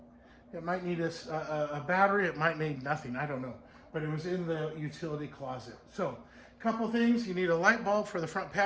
It might need a battery, it might need nothing, I don't know. But it was in the utility closet. So, a couple things, you need a light bulb for the front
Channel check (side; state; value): both; identical; correlation 1.00